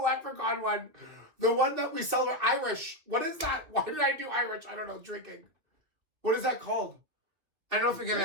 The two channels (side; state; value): left; late; 2.6 ms